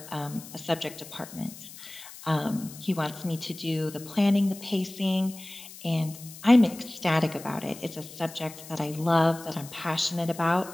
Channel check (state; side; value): noise; left; hiss, 16 dB below the sound